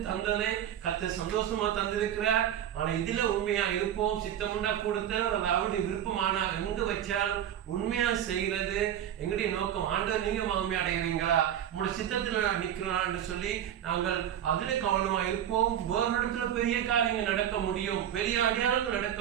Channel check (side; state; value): left; quieter; 10.4 dB